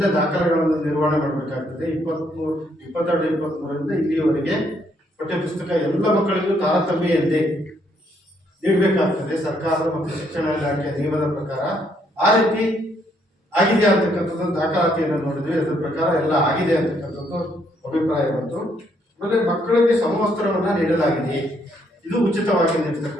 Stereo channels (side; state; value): both; normal; correlation 0.71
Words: ದಾಖಲೆಗಳನ್ನು ನಿರ್ವಹಣೆ ಮಾಡಬೇಕಾಗ್ತದೆ. 22-23ರಿಂದ ಇಲ್ಲಿಯವರೆಗೆ ಪಠ್ಯಪುಸ್ತಕ ಎಲ್ಲ ಮಕ್ಕಳಿಗೂ ತಾರತಮ್ಯೆಯಲ್ಲದೆ ನೀಡಬೇಕಾಗ್ತದೆ ಸರ್ಕಾರದ ಮತ್ತು ಶಿಕ್ಷಣ ಇಲಾಖೆಯ ನಿಯಮದ ಪ್ರಕಾರ. ಆ ರೀತಿ ಆಗಿದೆ ಅಂತಕ್ಕಂಥದ್ದು ದಾಖಲಾತಿಯನ್ನು ನೋಡಿದ್ವಿ. ಅದರ ಪ್ರಕಾರ ಎಲ್ಲ ಆಗಿದೆ ಅಂತಕ್ಕಂಥದ್ದು ಅಭಿಪ್ರಾಯ ಬಂತು. ಆಮೇಲೆ ಮಕ್ಕಳಿಗೆ ಸಮವಸ್ತ್ರವನ್ನು ನೀಡಲಾಗಿದೆ, ಇದು ಉಚಿತವಾಗಿ